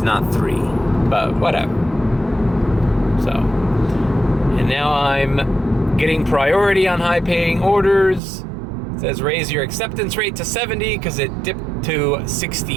not 3, but whatever. So, and now I'm getting priority on high-paying orders. It says raise your acceptance rate to 70 because it dipped to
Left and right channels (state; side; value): drops out; left; at 8.2 s